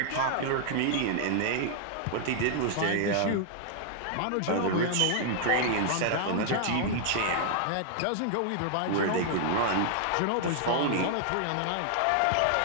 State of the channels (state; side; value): different; both; correlation 0.00